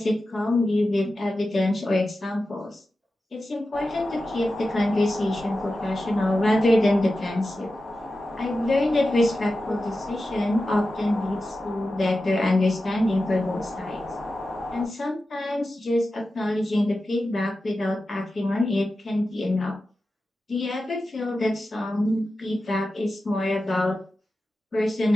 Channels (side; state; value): both; normal; correlation 0.92